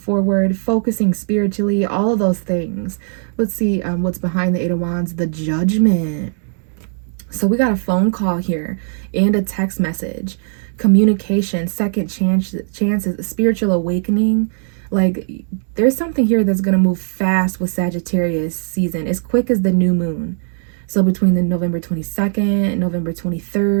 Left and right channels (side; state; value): left; silent; digital silence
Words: focusing spiritually, all of those things. Let's see what's behind the Eight of Wands, the Judgment. So we got a phone call here and a text message. Communication, second chances, spiritual awakening. Like, there's something here that's going to move fast with Sagittarius season, as quick as the new moon. So between the November 22nd, November